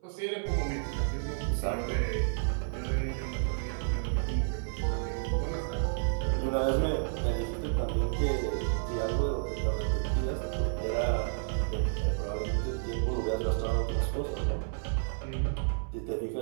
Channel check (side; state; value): left; silent; 57 dB below the other